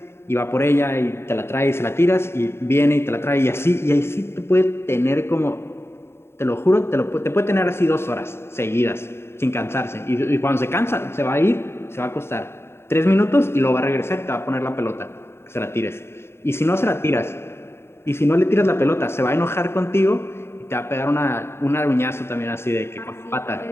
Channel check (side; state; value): right; late; 0.12 ms